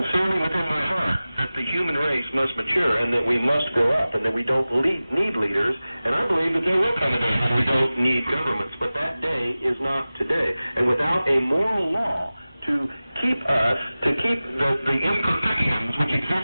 within my heart, that the human race must mature and that we must grow up and that we don't need leaders. And I believe that there will come a day when we don't need governments. But that day is not today. And without a moral law to keep the imperfections which exist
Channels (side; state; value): both; inverted; correlation -0.97